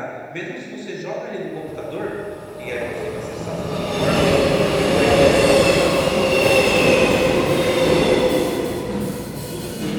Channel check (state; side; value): identical; both; correlation 1.00